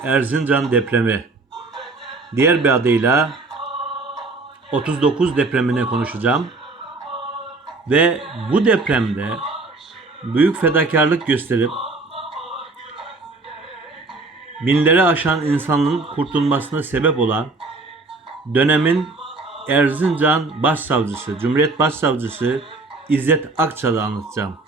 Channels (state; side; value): quieter; left; 3.5 dB